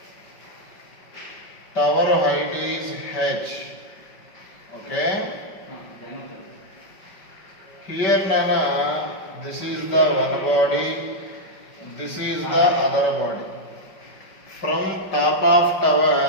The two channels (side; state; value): right; late; 5.2 ms